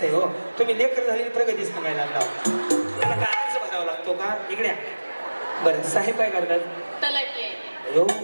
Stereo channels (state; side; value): inverted; both; correlation -1.00